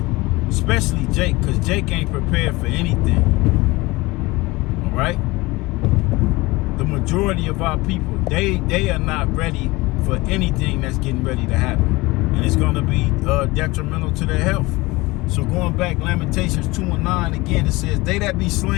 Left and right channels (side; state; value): right; quieter; 21.8 dB